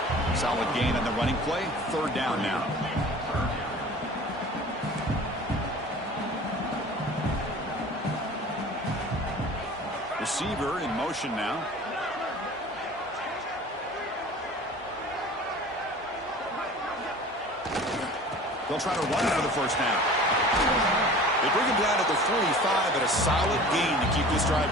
Solid gain on the running play. Third down now. Receiver in motion now. They'll try to run for the first down. They bring him down at the 45 at a solid gain to keep this drive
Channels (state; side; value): normal; both; correlation 0.42